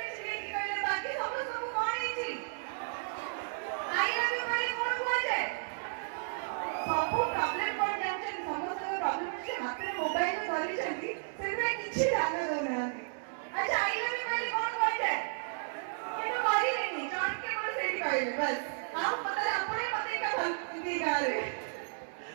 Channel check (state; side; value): silent; left; digital silence